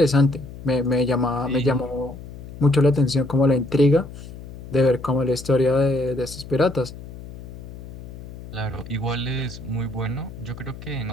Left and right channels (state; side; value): noise; left; hum, 13 dB below the sound